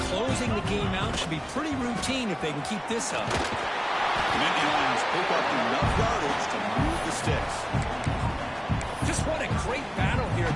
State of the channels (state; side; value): identical; both; correlation 1.00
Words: closing the game out should be pretty routine if they can keep this up. The Nittany Lions pick up enough yardage to move the sticks. Just what a great battle here at